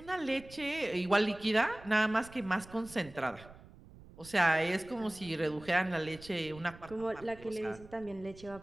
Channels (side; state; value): right; noise; rumble, 20 dB below the sound